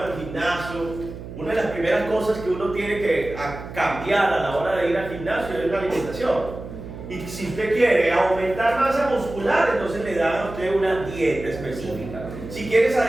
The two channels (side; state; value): right; noise; hum, 12 dB below the sound